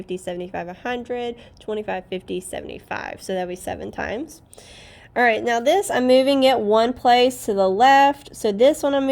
75, 100, 25, 50, 75. So that'll be 7 times. All right, now this, I'm moving it one place to the left. So this one I'm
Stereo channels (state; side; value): identical; both; correlation 1.00